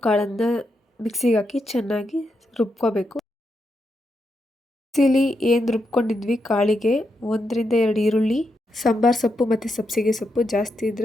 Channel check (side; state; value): both; normal; correlation 0.83